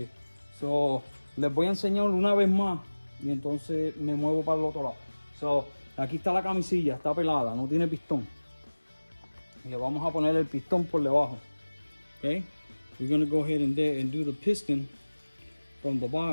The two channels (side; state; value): both; inverted; correlation -1.00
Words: So, les voy a enseñar una vez más y entonces me muevo para el otro lado. So, aquí está la camisilla, está pelada, no tiene pistón. Y le vamos a poner el pistón por debajo. Okay? We're going to go ahead and do the piston from the